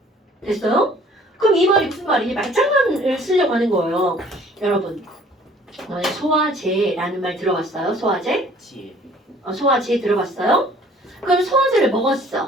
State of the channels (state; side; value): normal; both; correlation 0.54